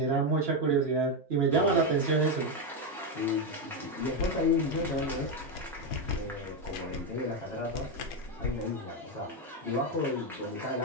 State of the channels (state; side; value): normal; both; correlation 0.07